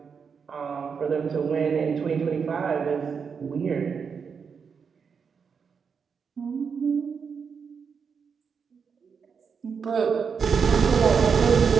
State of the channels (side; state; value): left; quieter; 6.1 dB